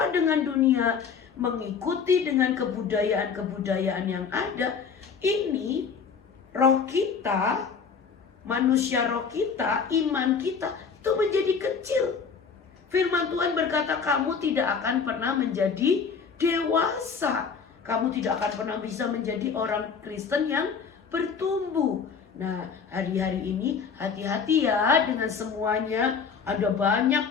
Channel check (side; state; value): right; quieter; 6.0 dB